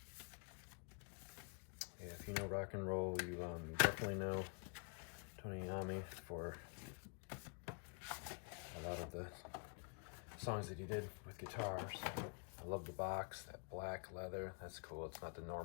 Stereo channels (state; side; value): quieter; right; 38.4 dB